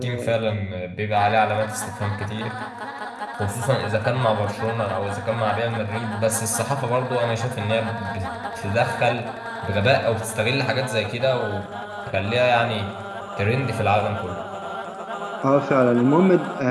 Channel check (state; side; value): identical; both; correlation 1.00